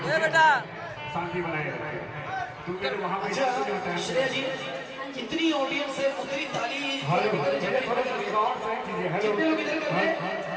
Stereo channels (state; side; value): identical; both; correlation 1.00